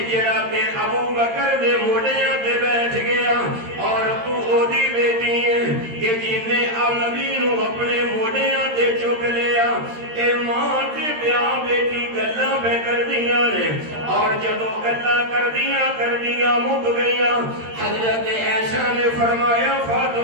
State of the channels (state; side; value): late; left; 13 ms